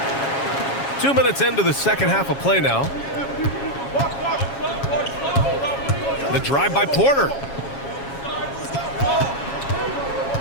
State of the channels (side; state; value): right; late; 7.3 ms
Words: Two minutes into the second half of play now. The drive by Porter.